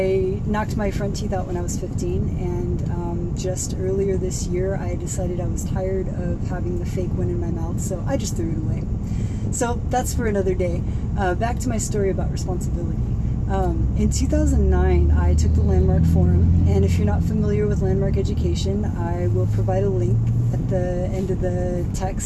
knocked my front teeth out when I was 15, and just earlier this year I decided I was tired of having the fake one in my mouth, so I just threw it away. So that's for another day. Back to my story about responsibility. In 2009, I took the Landmark Forum, and if you're not familiar with Landmark education, I will provide a link at the end of the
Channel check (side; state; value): both; identical; correlation 1.00